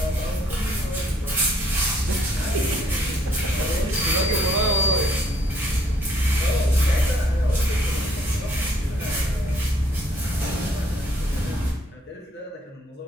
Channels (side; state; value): both; normal; correlation 0.66